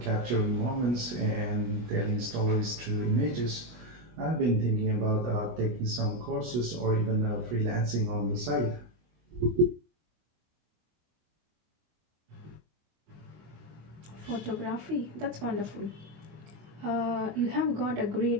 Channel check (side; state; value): left; late; 25 ms